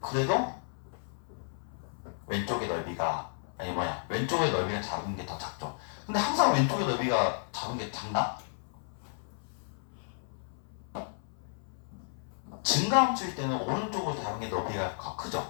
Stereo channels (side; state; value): right; silent; 56 dB below the other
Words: 그래도 왼쪽의 넓이가 왼쪽의 넓이가 작은 게 더 작죠. 근데 항상 왼쪽의 넓이가 작은 게 작나? 증가함수일 때는 오른쪽으로 작은 게 넓이가 더